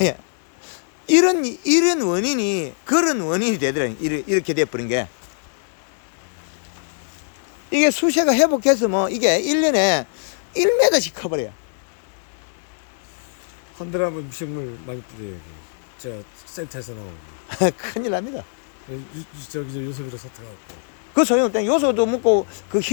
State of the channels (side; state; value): right; silent; 60 dB below the other